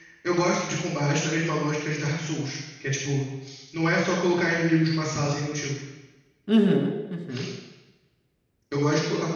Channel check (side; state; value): both; identical; correlation 1.00